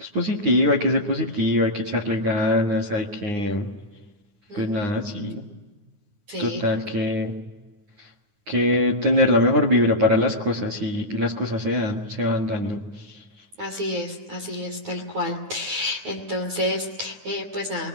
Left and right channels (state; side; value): late; left; 9.6 ms